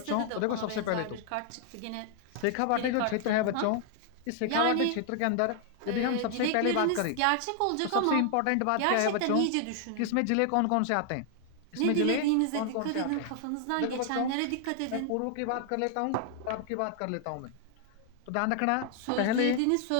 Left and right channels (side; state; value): both; different; correlation 0.00